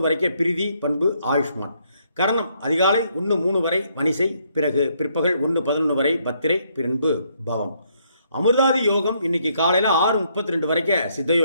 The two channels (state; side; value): inverted; both; correlation -0.72